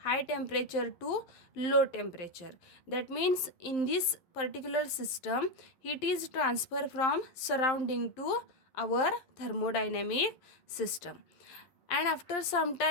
high temperature to low temperature. That means in this particular system, heat is transferred from surrounding to our thermodynamic system. And after some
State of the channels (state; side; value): late; right; 11 ms